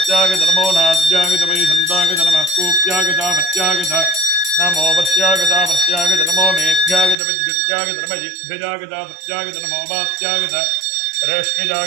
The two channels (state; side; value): drops out; left; at 7.2 s